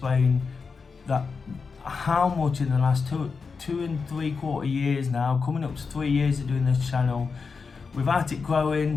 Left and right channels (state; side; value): quieter; right; 5.0 dB